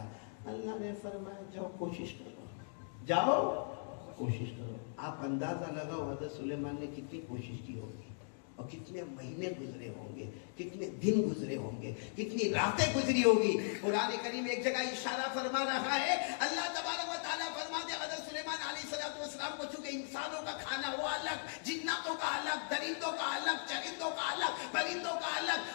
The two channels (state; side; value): silent; right; digital silence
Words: اللہ نے فرمایا جاؤ کوشش کرو، جاؤ کوشش کرو۔ آپ اندازہ لگاؤ حضرت سلیمان نے کتنی کوشش کی ہوگی، اور کتنے مہینے گزرے ہوں گے، کتنے دن گزرے ہوں گے، کتنی راتیں گزری ہوگی۔ قرآن کریم ایک جگہ اشارہ فرما رہا ہے، اللہ تبارک و تعالیٰ فرماتے حضرت سلیمان علیہ السلام کو چونکہ انسانوں کا کھانا وہ الگ، جناتوں کا الگ، درندوں کا الگ، چرندوں کا الگ، پرندوں کا الگ،